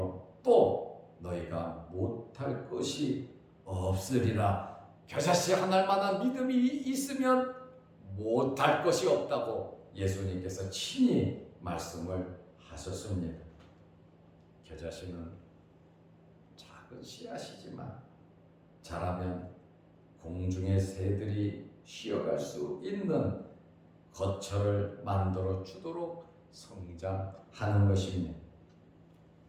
또 너희가 못할 것이 없으리라. 겨자씨 한 알만한 믿음이 있으면 못할 것이 없다고 예수님께서 친히 말씀을 하셨습니다. 겨자씨는 작은 씨앗이지만 자라면 공중의 새들이 쉬어갈 수 있는 거처를 만들어 주도록 성장하는 것입니다.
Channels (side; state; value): both; identical; correlation 1.00